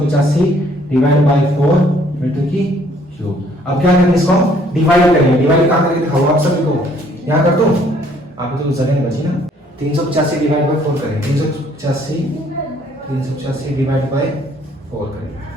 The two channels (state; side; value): normal; both; correlation 0.62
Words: डिवाइड बाय 4 मीटर की क्यूब। अब क्या करेंगे? इसको डिवाइड करेंगे। डिवाइड कहां करके दिखाओ आप सभी को? यहाँ कर दो, आपको तो जगह नहीं बची ना। 385 डिवाइड बाय 4 करेंगे। 385 डिवाइड बाय 4 करेंगे,